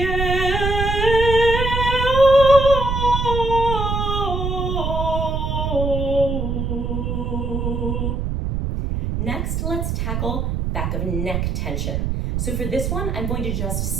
Next, let's tackle back of neck tension. So for this one, I'm going to just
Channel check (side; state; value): right; noise; rumble, 1 dB below the sound